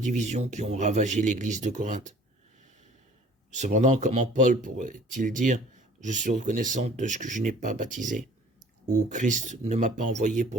qui ont ravagé l'église de Corinthe. Cependant, comment Paul pourrait-il dire « Je suis reconnaissant de ce que je n'ai pas baptisé » ou « Christ ne m'a pas envoyé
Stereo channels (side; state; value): both; normal; correlation 0.51